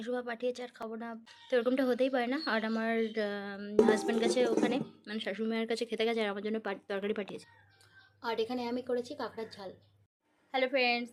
পাঠিয়েছে, আর খাবো না তো এরকমটা হতেই পারে না। আর আমার হাজব্যান্ড গেছে ওখানে, মানে শাশুড়ি মায়ের কাছে খেতে গেছে, আর আমার জন্য তরকারি পাঠিয়েছে। আর এখানে আমি করেছি কাঁকড়ার ঝাল। হ্যালো ফ্রেন্ডস,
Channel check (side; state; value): both; identical; correlation 1.00